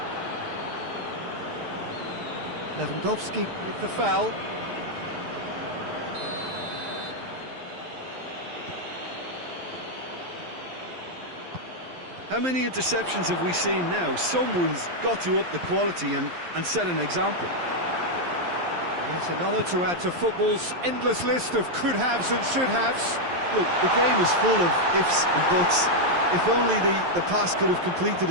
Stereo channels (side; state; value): left; late; 11 ms